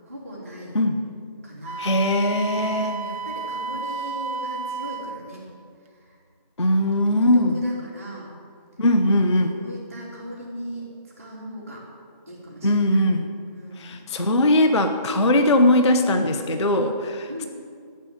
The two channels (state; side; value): inverted; both; correlation -0.53